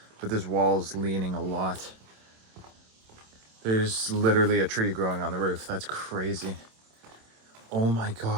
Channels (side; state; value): left; late; 27 ms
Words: but this wall's leaning a lot. There's literally a tree growing on the roof. That's crazy. Oh my